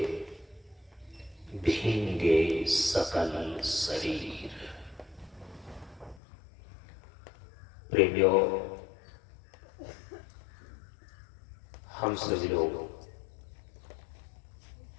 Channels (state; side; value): drops out; right; at 6.2 s